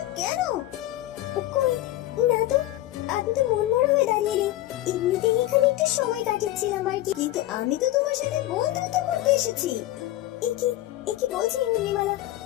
কেন? কই না তো, আমি তো মন মরা হয়ে দাঁড়িয়ে নেই, এমনিতেই এখানে একটু সময় কাটাচ্ছিলাম আর কি। কিন্তু আমি তো তোমার সাথে বন্ধুত্ব করতে এসেছি। এ কি বলছি উর্মিমালা?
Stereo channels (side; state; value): right; quieter; 15.4 dB